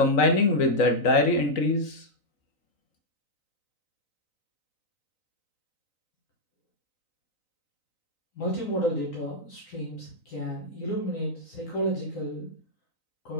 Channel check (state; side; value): late; right; 3.9 ms